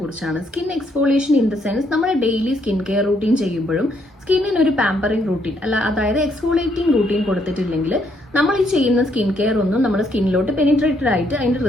Skin exfoliation in the sense നമ്മൾ daily skin care routine ചെയ്യുമ്പോഴും സ്കിന്നിന് ഒരു പാമ്പറിംഗ് റൂട്ടീൻ അതായത് എക്സ്ഫോളിയേറ്റിംഗ് റൂട്ടീൻ കൊടുത്തിട്ടില്ലെങ്കിൽ നമ്മൾ ഈ ചെയ്യുന്ന സ്കിൻ കെയർ ഒന്നും നമ്മുടെ സ്കിന്നിലോട്ട് പെനിട്രേറ്റഡ് ആയിട്ട് അതിന്റെ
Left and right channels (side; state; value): both; normal; correlation 0.72